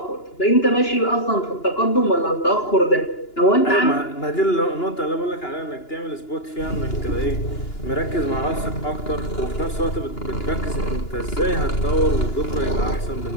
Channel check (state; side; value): late; right; 2.9 ms